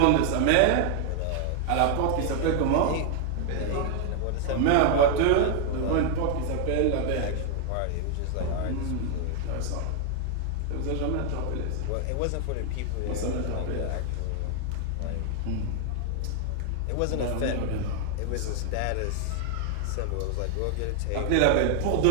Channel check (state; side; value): different; both; correlation 0.00